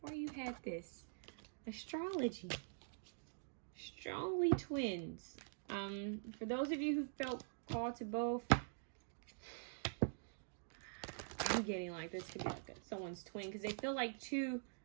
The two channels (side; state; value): left; silent; digital silence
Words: you had this. Astrology. Strongly twins. For those of you who felt called to both, I'm getting like this could be like someone's twin, because they feel like two